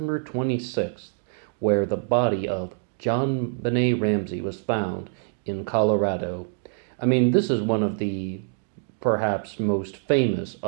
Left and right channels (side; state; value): left; silent; digital silence